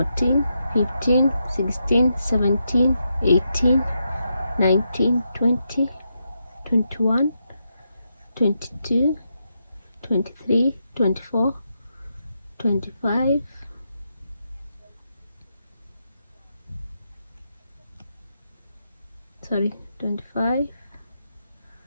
15, 16, 17, 18, 19, 20, 21, 22, 23, 24, 25, 25,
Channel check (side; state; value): both; inverted; correlation -0.83